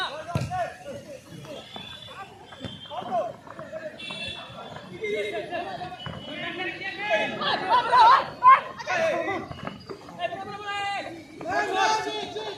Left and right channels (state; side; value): identical; both; correlation 1.00